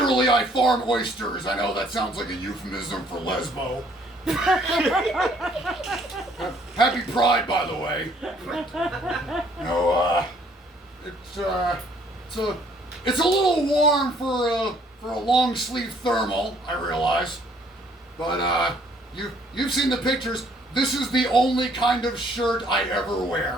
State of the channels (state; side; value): normal; both; correlation 0.62